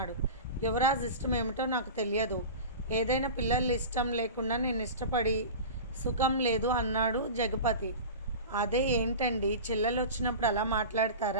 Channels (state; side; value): inverted; both; correlation -0.32